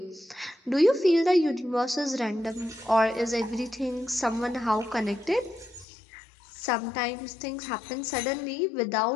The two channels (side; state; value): right; drops out; at 5.9 s